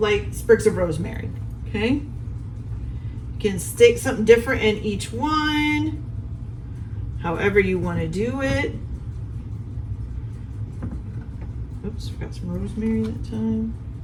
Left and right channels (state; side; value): identical; both; correlation 1.00